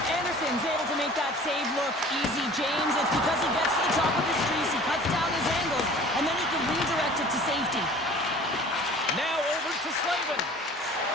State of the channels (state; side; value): normal; both; correlation 0.46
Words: Anderson's able to make that save look easy, James. It's because he gets to the top of his crease, he cuts down his angles, and then he can redirect it to safety. Now over to Slavin.